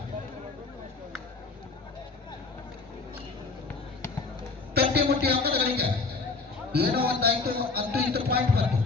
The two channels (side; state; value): right; quieter; 4.0 dB